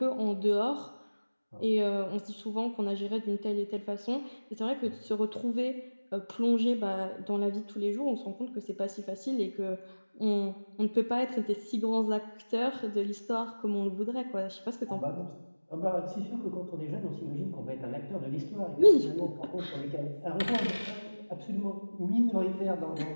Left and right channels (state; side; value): inverted; both; correlation -1.00